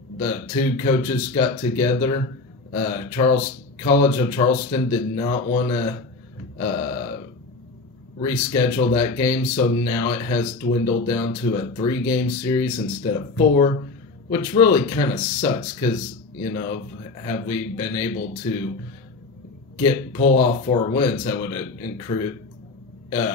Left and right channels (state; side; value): quieter; right; 3.6 dB